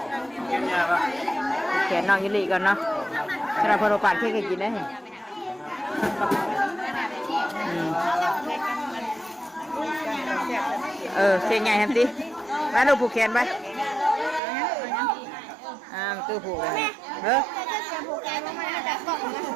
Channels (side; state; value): left; drops out; at 14.4 s